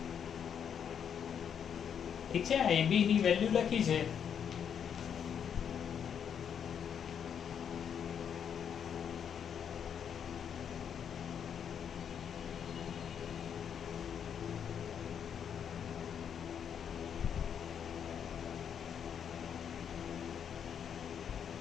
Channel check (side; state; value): right; quieter; 8.0 dB